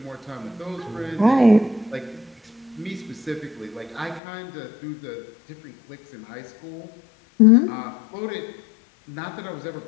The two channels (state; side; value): drops out; right; at 4.2 s